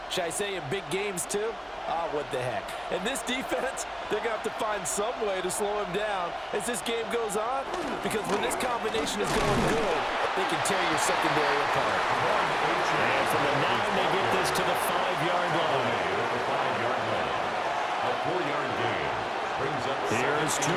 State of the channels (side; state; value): both; identical; correlation 1.00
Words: Should I say in big games too? What the heck. And this defense, they're going to have to find some way to slow him down as this game goes on, because when this combination is going good, they can tear your secondary apart. And from the 9, they get this to the 5-yard line. A 4-yard gain brings up. Here's